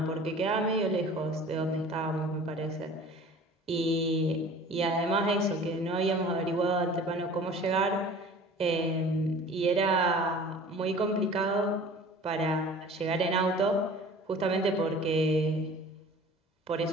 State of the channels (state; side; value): normal; both; correlation 0.44